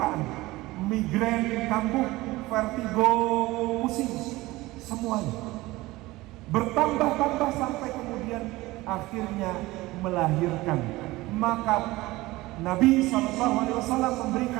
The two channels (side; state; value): left; quieter; 19.4 dB